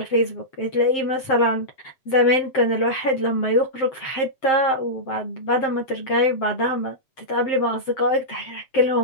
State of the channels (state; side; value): late; right; 7.6 ms